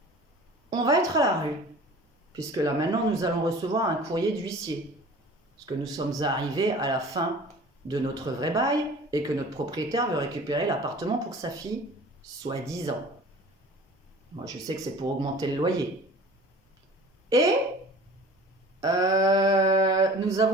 On va être à la rue, puisque là maintenant nous allons recevoir un courrier d'huissier. Parce que nous sommes arrivés à la fin de notre vrai bail et que notre propriétaire veut récupérer l'appartement pour sa fille, soi-disant. Moi, je sais que c'est pour augmenter le loyer. Et nous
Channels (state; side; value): normal; both; correlation 0.44